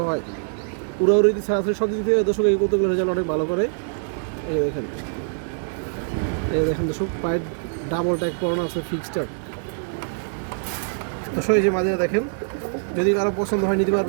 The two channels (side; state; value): left; silent; 63 dB below the other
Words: হয়। উড়াউড়ি ছাড়াছাড়ি সব দিক থেকে দর্শক এই কবুতরগুলোর রেজাল্ট অনেক ভালো করে। এই দেখেন, এই দেখেন দর্শক পায়ের ডাবল ট্যাগ পরানো আছে, ফিক্সড ট্যাগ দর্শক। এই যে মাদিরা দেখেন, যদি কারো পছন্দ হয় নিতে